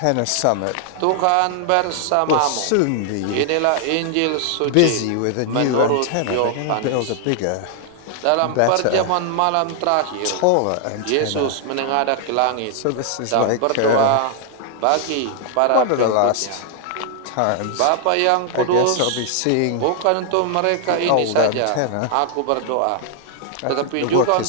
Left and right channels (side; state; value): both; different; correlation 0.00